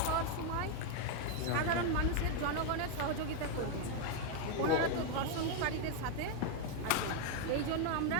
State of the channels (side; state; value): both; different; correlation 0.01